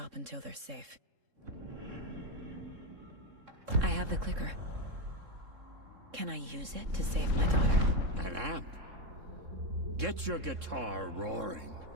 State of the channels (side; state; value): left; late; 3.7 ms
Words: until they're safe. I have the clicker. Can I use it to save my daughter? An amp? Get your guitar roaring,